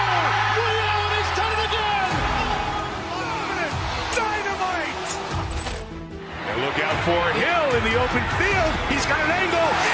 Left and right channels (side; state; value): both; identical; correlation 1.00